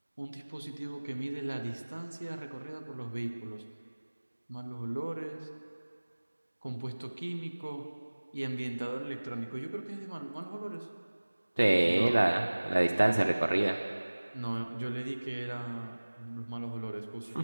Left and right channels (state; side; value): inverted; both; correlation -1.00